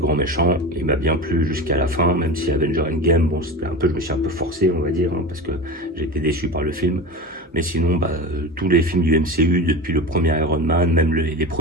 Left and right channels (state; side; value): normal; both; correlation 0.27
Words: méchant, il m'a bien plu jusqu'à la fin, même si Avenger Endgame, bon c'était un peu, je me suis un peu forcé on va dire, parce que j'ai été déçu par le film. Mais sinon bah, tous les films du MCU depuis le premier Iron Man, même les